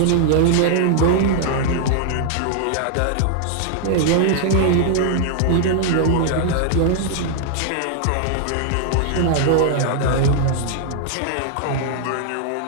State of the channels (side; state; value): both; different; correlation -0.01